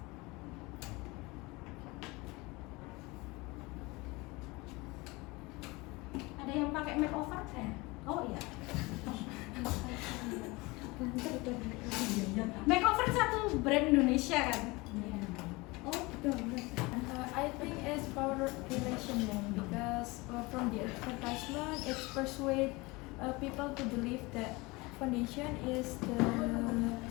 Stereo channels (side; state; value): right; quieter; 23.9 dB